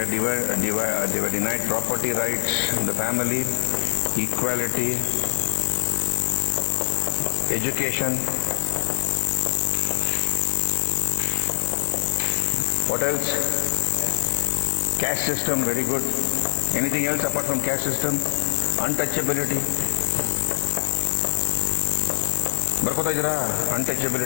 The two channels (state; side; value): silent; right; 63 dB below the other